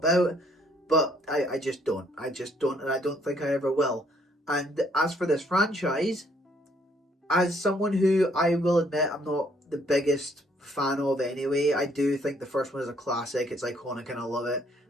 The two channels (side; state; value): both; normal; correlation 0.66